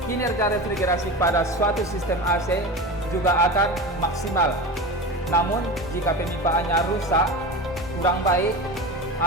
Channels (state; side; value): normal; both; correlation 0.28